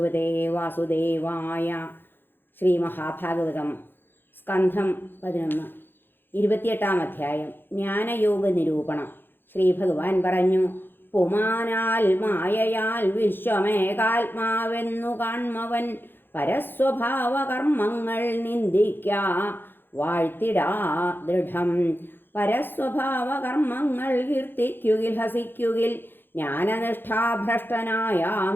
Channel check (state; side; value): late; right; 0.099 ms